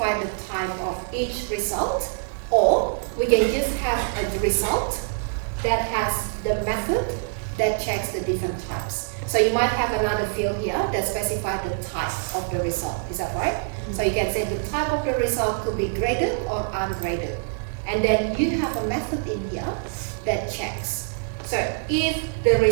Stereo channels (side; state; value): left; silent; digital silence